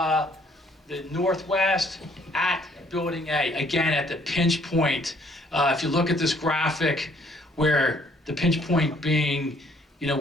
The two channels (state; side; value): normal; both; correlation 0.63